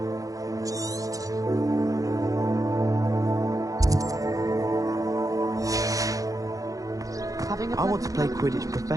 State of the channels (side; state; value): left; late; 0.17 ms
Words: I want to play Quidditch